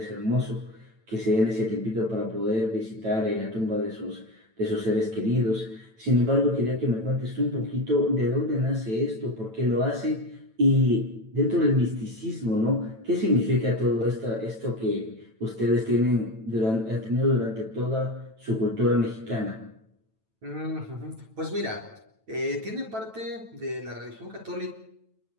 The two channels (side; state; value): left; late; 9.0 ms